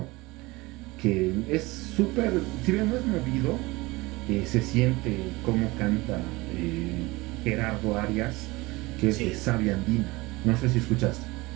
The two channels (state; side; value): quieter; left; 22.0 dB